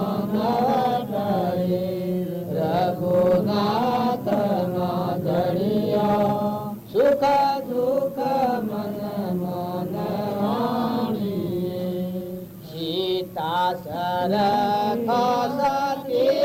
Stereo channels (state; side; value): identical; both; correlation 1.00